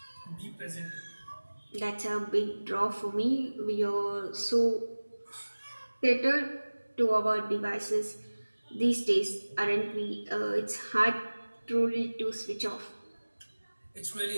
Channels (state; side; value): inverted; both; correlation -1.00